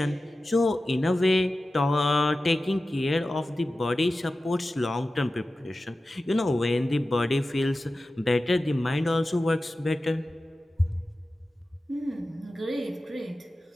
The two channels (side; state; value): both; normal; correlation 0.94